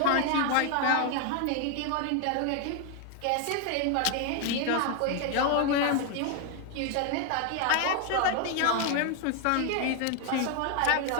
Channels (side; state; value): both; different; correlation 0.01